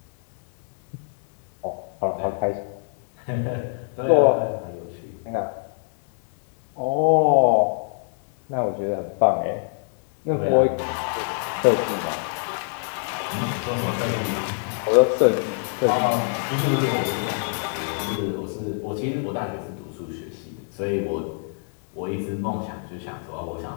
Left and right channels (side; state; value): right; silent; 62 dB below the other